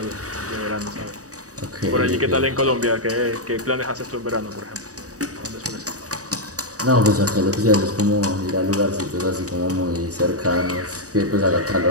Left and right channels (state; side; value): late; left; 0.66 ms